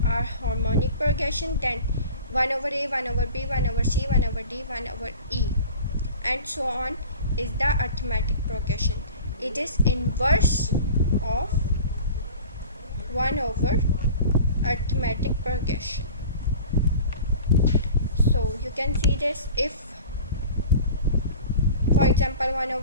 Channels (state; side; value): inverted; both; correlation -0.40